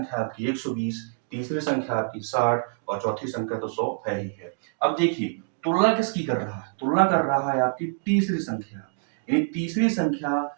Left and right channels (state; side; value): silent; left; digital silence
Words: आपकी 120, तीसरी संख्या आपकी 60 और चौथी संख्या तो 100 है ही है। अब देखिए तुलना किसकी कर रहा है, तुलना कर रहा है आपकी तीसरी संख्या, यानी तीसरी संख्या